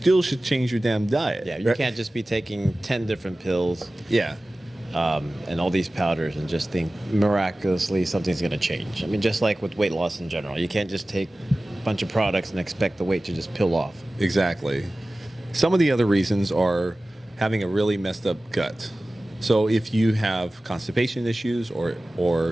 should change your damn diet. Yeah, you right? can't just be taking 10 different pills Yeah. and all these powders and just think miraculously something's going to change. I mean, just like with weight loss in general, you can't just take a bunch of products and expect the weight to just peel off. Exactly. Some of the other reasons are having a really messed up gut. So if you have constipation issues or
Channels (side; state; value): both; normal; correlation 0.97